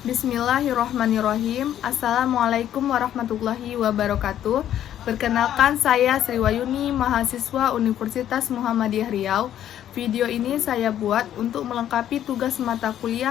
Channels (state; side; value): quieter; right; 11.0 dB